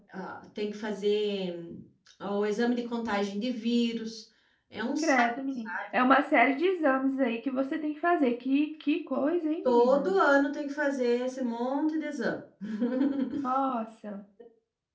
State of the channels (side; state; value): both; identical; correlation 1.00